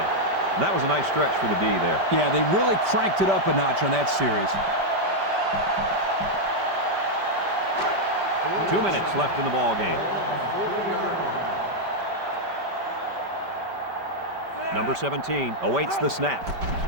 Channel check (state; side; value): late; left; 5.1 ms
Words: And that was a nice stretch for the D there. Yeah, they really cranked it up a notch on that series. 2 minutes left in the ball game. Number 17 awaits the snap.